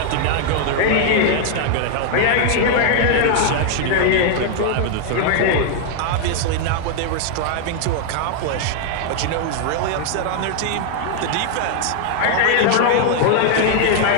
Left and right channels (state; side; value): different; both; correlation 0.00